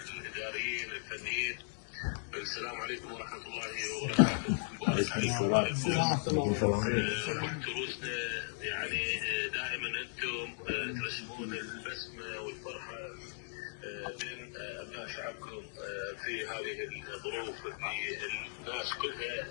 الاداريين، الفنيين، السلام عليكم ورحمه الله وبركاته. مبارك عليكم تروسنا، يعني دائما انتم ترسمون البسمه والفرحه بين ابناء شعبكم في هذه الظروف اللي الناس كلها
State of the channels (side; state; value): right; silent; 53 dB below the other